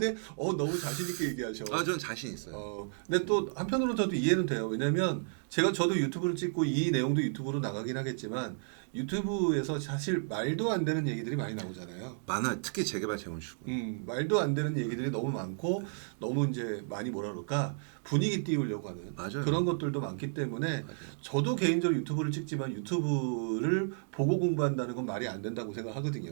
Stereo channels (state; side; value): silent; left; digital silence